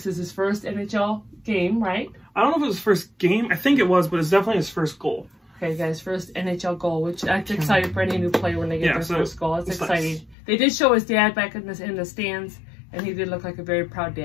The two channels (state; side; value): drops out; right; at 10.4 s